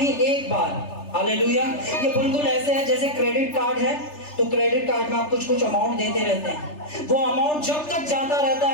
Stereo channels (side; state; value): right; late; 3.3 ms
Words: एक बार। हालेलुया। ये बिल्कुल ऐसे है जैसे क्रेडिट कार्ड है, तो क्रेडिट कार्ड में आप कुछ कुछ अमाउंट देते रहते हैं। वो अमाउंट जब तक जाता रहता